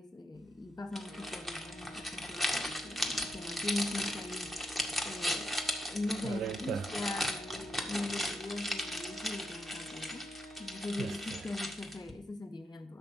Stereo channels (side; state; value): both; normal; correlation 0.82